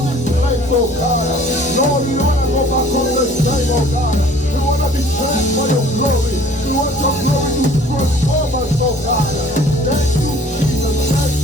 this place, oh God. Lord, we want to go back on the same, oh God. We want to be changed by your glory. We want your glory to transform us, oh God. Thank you, Jesus. Thank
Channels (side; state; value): both; normal; correlation 0.52